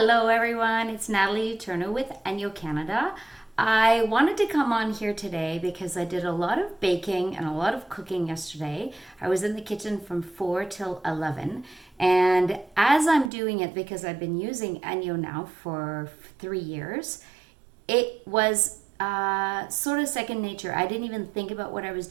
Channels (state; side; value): drops out; left; at 13.3 s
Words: everyone, it's Natalie Eterno with ENJO Canada. I wanted to come on here today because I did a lot of baking and a lot of cooking yesterday. I was in the kitchen from 4 till 11, and as I'm doing it, because I've been using ENJO now for 3 years, it was sort of second nature. I didn't even think about what I was